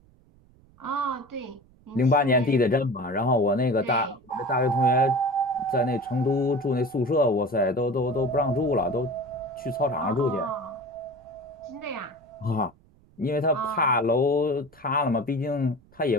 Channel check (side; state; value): right; noise; rumble, 29 dB below the sound